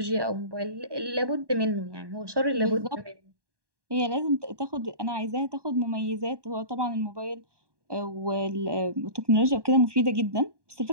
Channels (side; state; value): left; late; 1.2 ms